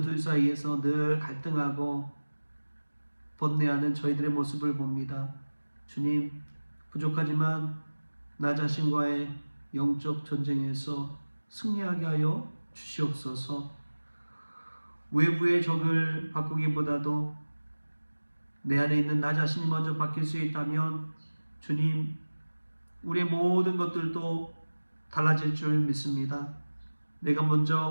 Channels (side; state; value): both; inverted; correlation -1.00